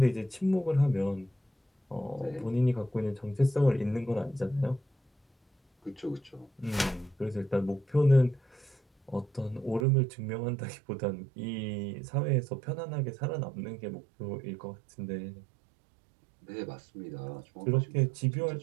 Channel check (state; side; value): drops out; left; at 9.9 s